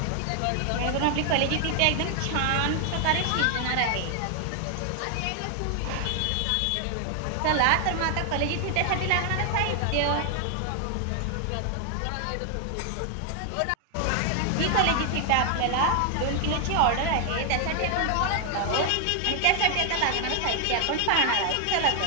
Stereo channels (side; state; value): both; different; correlation 0.00